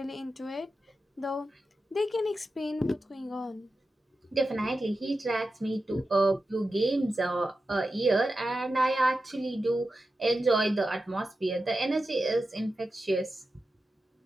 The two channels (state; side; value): normal; both; correlation 0.91